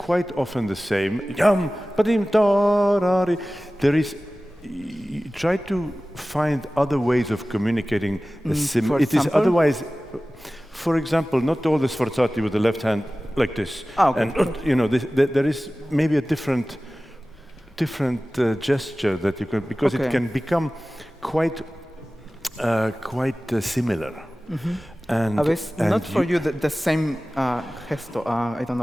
often the same. There is. Try to find other ways of communicating. It is otherwise. For example, not all the sforzati with the left hand like this. Okay. And there is maybe a different gesture that you can, because it can become quite similar. And not for you the same gesto. I don't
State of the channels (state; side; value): normal; both; correlation 0.97